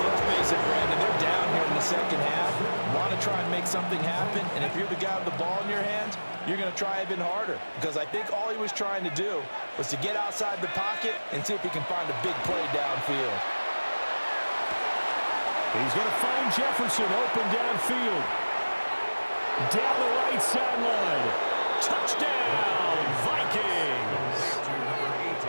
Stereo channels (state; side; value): inverted; both; correlation -1.00